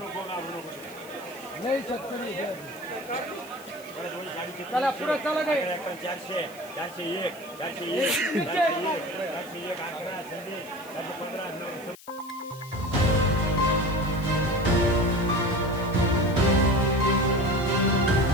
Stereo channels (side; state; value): left; noise; hiss, 21 dB below the sound